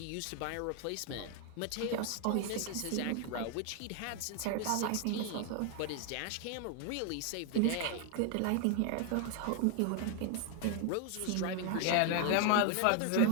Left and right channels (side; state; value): both; different; correlation 0.01